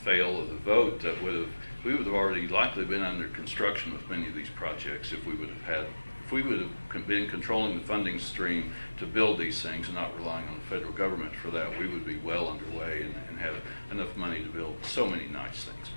fail of the vote, that we would have already likely been under construction with many of these projects if we would have been controlling the funding stream to build these things and not relying on the federal government for that. We would be well underway and have enough money to build so many nice things,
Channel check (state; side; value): inverted; both; correlation -1.00